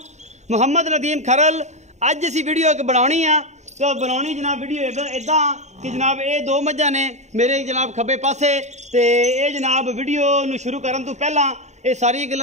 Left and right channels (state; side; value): late; left; 0.33 ms